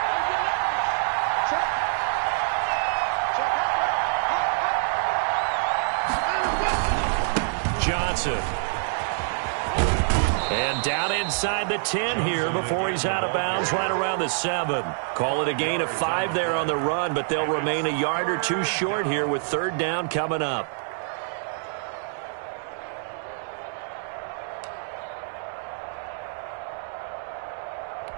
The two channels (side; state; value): left; silent; 61 dB below the other